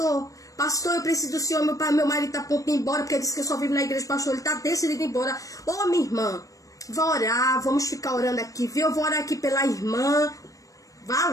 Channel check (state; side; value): late; right; 0.16 ms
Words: Pastor, eu preciso do senhor, meu marido tá a ponto de ir embora, porque ele disse que eu só vivo na igreja, pastor, ele tá decidido ir embora. Ô, minha irmã, vá orar, vamos ficar orando aqui, viu? Eu vou orar aqui pela irmã, vá